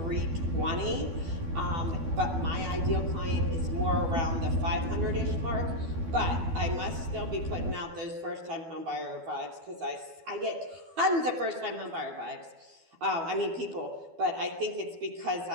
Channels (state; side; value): late; left; 12 ms